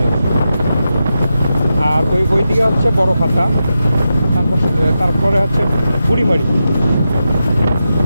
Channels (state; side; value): inverted; both; correlation -0.89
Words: আর ওই দিকে হচ্ছে বড় খাতা, তারপরে হচ্ছে বুড়িমারি।